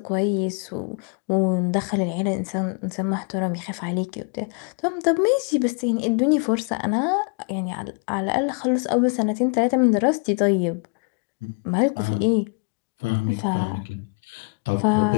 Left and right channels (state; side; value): quieter; right; 34.9 dB